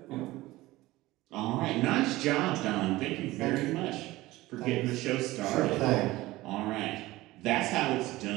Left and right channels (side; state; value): left; quieter; 18.3 dB